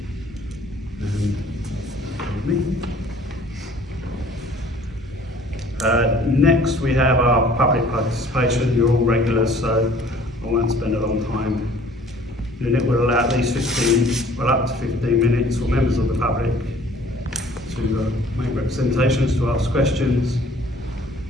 Next we have our public participation. You're all regulars, so I won't spend a long time. The unit will allow at least up to 15 minutes for members of the public to make representations, to ask questions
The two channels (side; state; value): both; normal; correlation 0.53